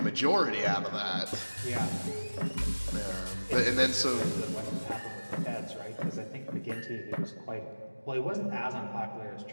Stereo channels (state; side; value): inverted; both; correlation -1.00